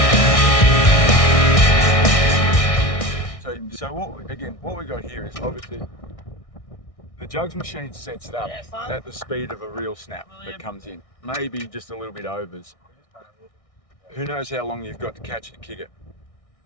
So what we got here is obviously the jugs machine sets it up at the speed of a real snap that comes in. Maybe just a little bit overs. Who knows how long you've got to catch it and kick it.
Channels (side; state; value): right; late; 1.6 ms